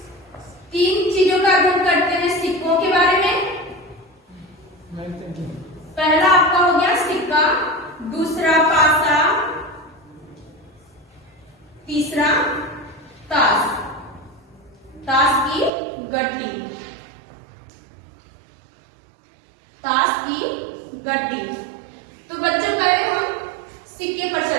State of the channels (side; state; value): left; drops out; at 15.7 s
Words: तीन चीजों का अध्ययन करते हैं। सिक्कों के बारे में, पहला आपका हो गया सिक्का, दूसरा पासा, तीसरा ताश, ताश की गड्डी, ताश की गड्डी। तो बच्चों पहले हम सिक्के पर